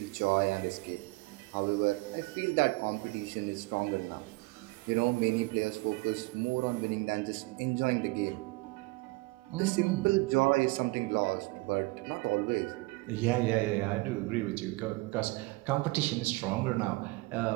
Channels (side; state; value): left; quieter; 24.0 dB